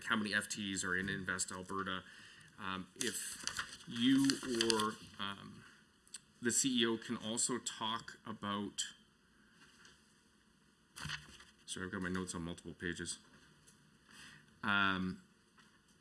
how many FTEs are in Invest Alberta. If you or the CEO can also talk about, sorry, I've got my notes on multiple pages. Again,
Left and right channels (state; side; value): identical; both; correlation 1.00